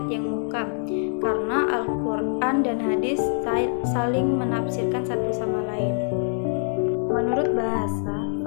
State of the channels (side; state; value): right; silent; digital silence